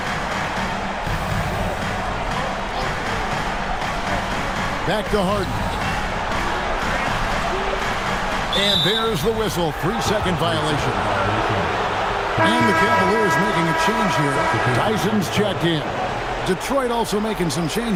Back to Harden. And there's the whistle. 3-second violation. And the Cavaliers making a change here. Tyson's checked in. Detroit also making some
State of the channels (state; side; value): identical; both; correlation 1.00